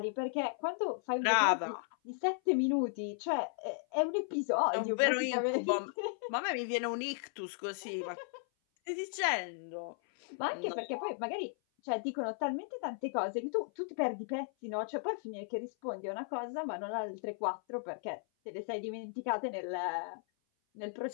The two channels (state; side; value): silent; right; 54 dB below the other